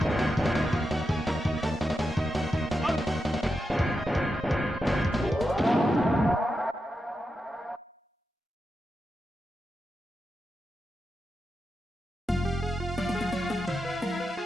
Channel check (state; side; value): normal; both; correlation 0.88